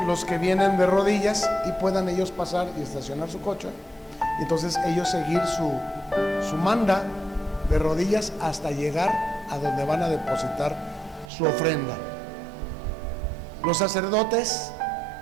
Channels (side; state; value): left; drops out; at 11.3 s